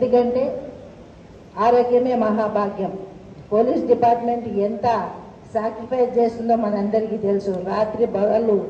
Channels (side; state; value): both; identical; correlation 1.00